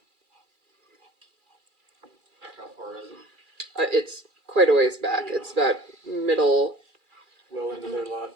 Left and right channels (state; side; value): late; left; 2.4 ms